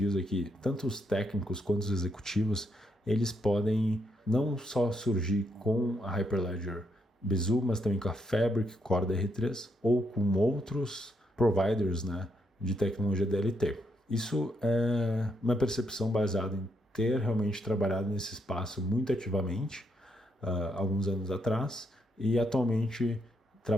aqui, tanto os técnicos quanto os executivos, eles podem não só surgir com a Hyperledger Besu, mas também com a Fabric Core DR3 ou com outros providers, né, de tecnologia DLT. Isso é uma percepção baseada em ter realmente trabalhado nesse espaço muito ativamente alguns anos atrás e atualmente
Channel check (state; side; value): normal; both; correlation 0.78